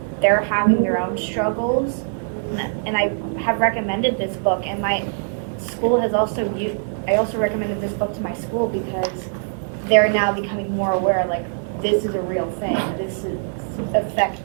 they're having their own struggles, and I have recommended this book, and my school has also I also recommended this book to my school because they're now becoming more aware, like, this is a real thing. This is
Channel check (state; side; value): silent; left; 64 dB below the other